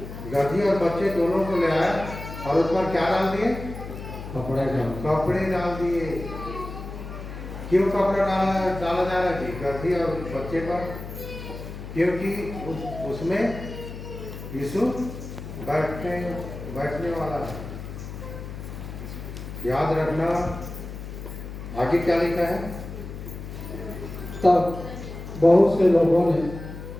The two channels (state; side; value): noise; left; hum, 10 dB below the sound